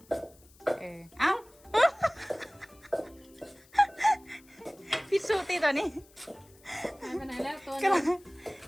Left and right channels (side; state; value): left; noise; hiss, 27 dB below the sound